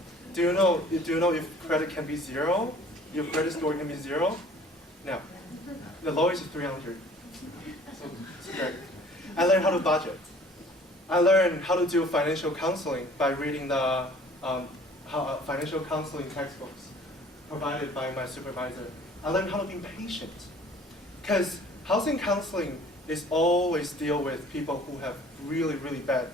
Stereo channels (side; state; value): both; normal; correlation 0.52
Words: Do you know if credit can be 0? Your credit score can be 0? No. The lowest is 300. So it's great. I learned how to budget. I learned how to do financial counseling by reading the financial counseling textbooks provided by my supervisor. I learned how to be patient, because housing counseling is always deal with people who have really, really bad